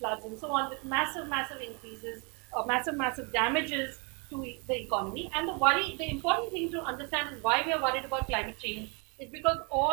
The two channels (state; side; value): quieter; left; 33.1 dB